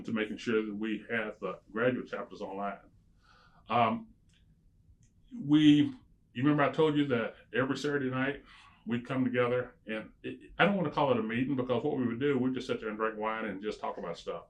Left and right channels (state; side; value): identical; both; correlation 1.00